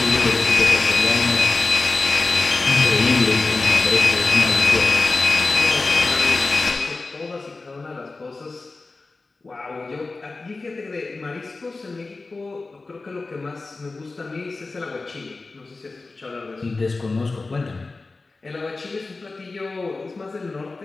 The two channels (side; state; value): right; quieter; 3.6 dB